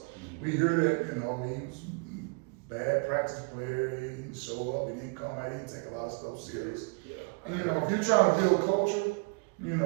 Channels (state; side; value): quieter; left; 34.2 dB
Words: We hear that, you know, he was bad practice player, he didn't show up, he didn't come out, he didn't take a lot of stuff serious. And you know, if you're trying to build culture, you